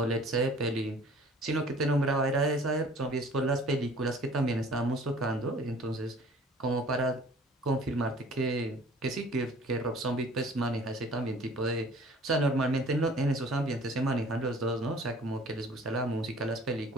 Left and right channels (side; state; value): both; normal; correlation 0.50